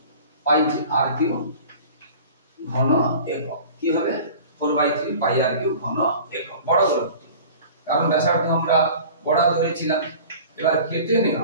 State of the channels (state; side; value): inverted; both; correlation -0.42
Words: পাই r কিউব ঘন একক। কি হবে? 4/3 পাই r কিউব ঘন একক, বড় গোলক। কারণ ব্যাসার্ধ আমরা বড় ধরেছিলাম। এবার কেটে